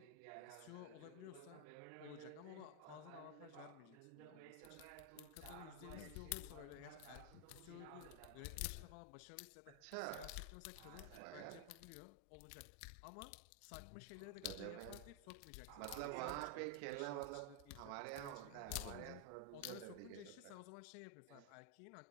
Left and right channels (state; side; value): different; both; correlation 0.00